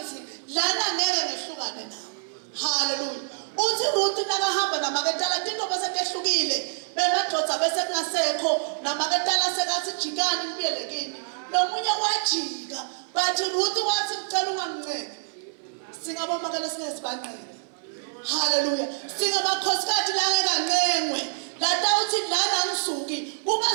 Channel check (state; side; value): silent; left; 61 dB below the other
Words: lana ngeke ngehlukane nawe. Haleluya. Uthi Ruth nakahamba namaketala tinto bese tehlukile. Bemadodza bese kungasekho namaketala sekathi jikani kubiyelekini. Nomunye wajika bathi Ruth wathi ngicela unganginceke. Singabomakela sinesibanqele. Haleluya. Singabakhosikazi la ngeke lata uthi lana ngisuki